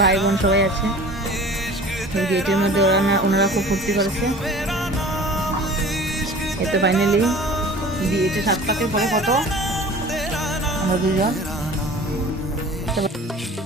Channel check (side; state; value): both; normal; correlation 0.43